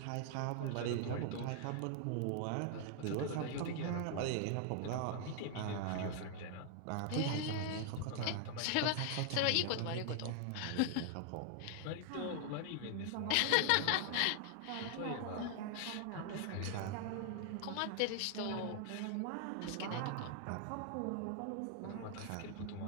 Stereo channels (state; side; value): different; both; correlation 0.00